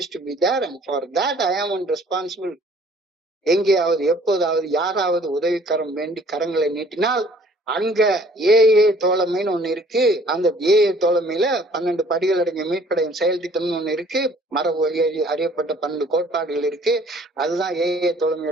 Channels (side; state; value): both; normal; correlation 0.56